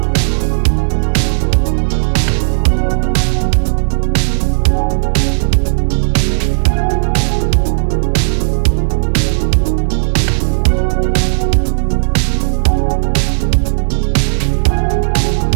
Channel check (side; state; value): left; silent; 69 dB below the other